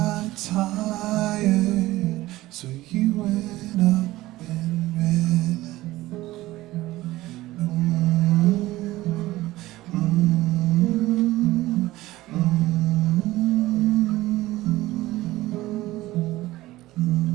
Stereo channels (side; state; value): left; quieter; 17.3 dB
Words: tired, so you went up and read.